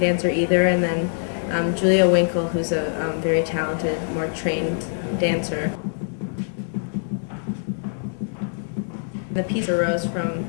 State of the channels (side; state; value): right; silent; digital silence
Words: dancer either. And then Julia Winkle, who's a very talented, more trained dancer. The piece arose from,